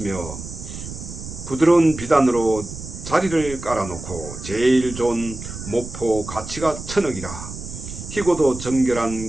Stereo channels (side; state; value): right; noise; rumble, 11 dB below the sound